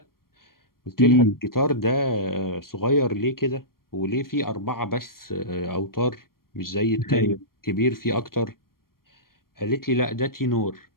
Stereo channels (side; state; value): right; late; 0.93 ms